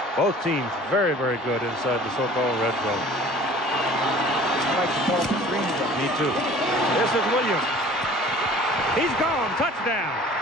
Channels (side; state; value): both; normal; correlation 0.47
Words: Both teams very, very good inside the so-called red zone. I like to call it the green zone. Me too. This is Williams. He's gone. Touchdown.